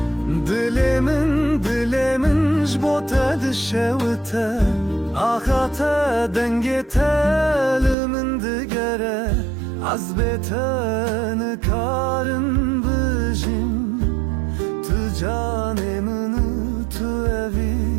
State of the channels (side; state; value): left; drops out; at 8.0 s